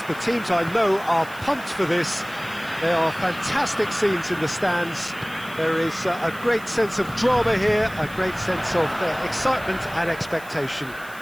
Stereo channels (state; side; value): noise; right; hiss, 20 dB below the sound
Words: The teams I know are pumped for this. There are fantastic scenes in the stands. There is a great sense of drama here, a great sense of excitement and expectation.